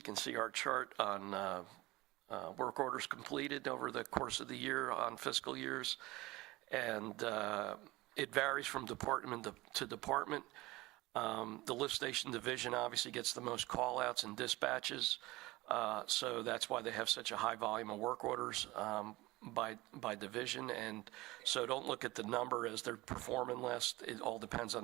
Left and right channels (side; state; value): left; quieter; 20.1 dB